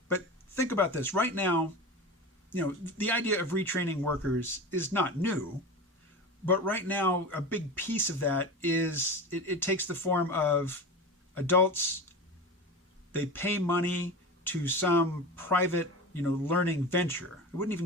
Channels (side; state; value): both; normal; correlation 0.28